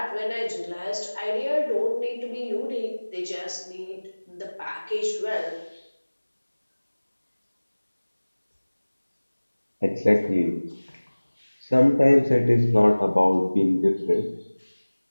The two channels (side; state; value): both; inverted; correlation -1.00